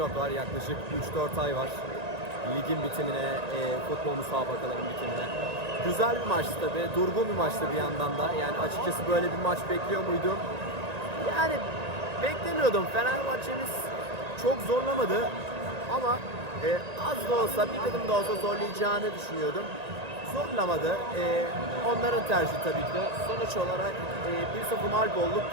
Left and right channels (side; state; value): left; late; 1.9 ms